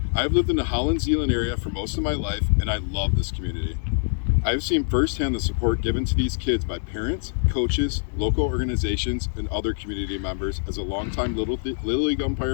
I have lived in the Holland-Zeeland area for most of my life, and I love this community. I have seen firsthand the support given to these kids by parents, coaches, local organizations, and other community members as a longtime Little League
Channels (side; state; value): right; silent; digital silence